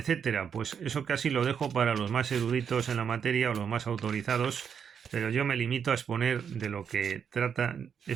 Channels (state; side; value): quieter; left; 7.4 dB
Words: pues eso casi lo dejo para los más eruditos en la materia o los más autorizados, pero yo me limito a exponer de lo que trata